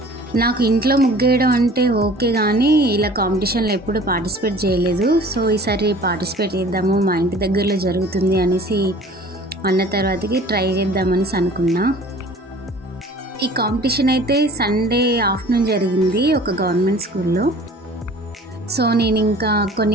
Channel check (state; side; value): normal; both; correlation 0.47